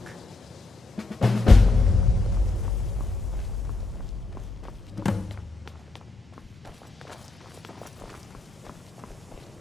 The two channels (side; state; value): right; quieter; 3.2 dB